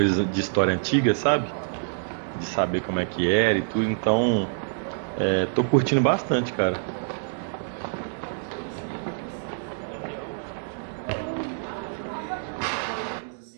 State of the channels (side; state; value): left; silent; digital silence